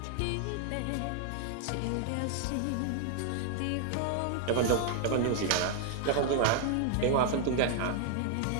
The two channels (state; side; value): different; both; correlation 0.00